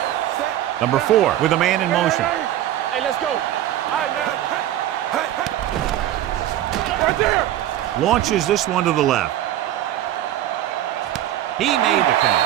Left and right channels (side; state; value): left; quieter; 12.8 dB